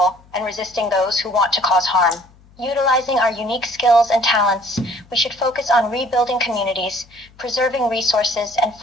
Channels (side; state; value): left; noise; hum, 28 dB below the sound